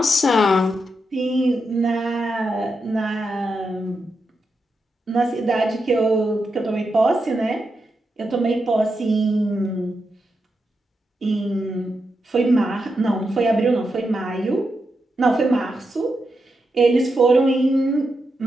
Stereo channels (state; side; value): normal; both; correlation 0.86